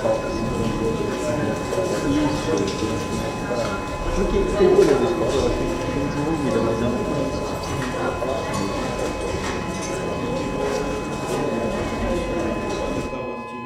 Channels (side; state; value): both; identical; correlation 1.00